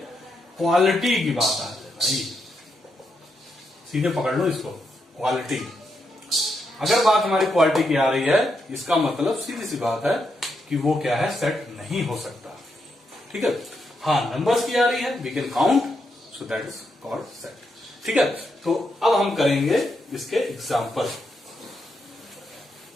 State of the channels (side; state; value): both; normal; correlation 0.82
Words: क्वालिटी की बात आ जाए भाई, सीधे पकड़ लो इसको, क्वालिटी। अगर बात हमारी क्वालिटी की आ रही है, इसका मतलब सीधी सी बात है कि वो क्या है, सेट नहीं हो सकता। ठीक है, हाँ नंबर्स की आ रही है, we can count, so that is called set. ठीक है, तो अब हम करेंगे इसके एग्जाम्पल।